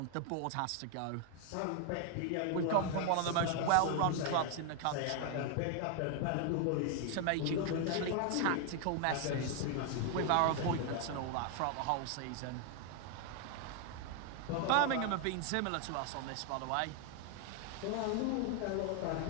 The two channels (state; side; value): different; both; correlation 0.01